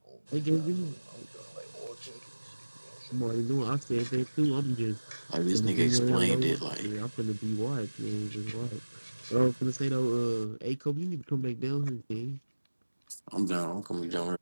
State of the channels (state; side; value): inverted; both; correlation -1.00